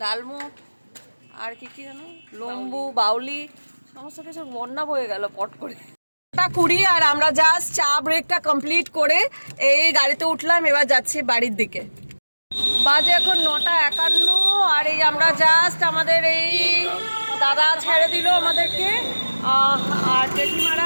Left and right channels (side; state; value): both; inverted; correlation -1.00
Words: ডালমুট আর কি কি জানো, লম্বু, বাউলি, সমস্ত কিছু বন্যা বয়ে গেল পট করে। 9:20, আর আমরা জাস্ট চা ব্রেকটা কমপ্লিট করে এই গাড়িতে উঠলাম, এবার যাচ্ছি বাড়ির দিকে। বাজে এখন 9:51, আর এই আমরা জাস্ট আমাদের এই দাদা ছেড়ে দিল আমাদেরকে, আর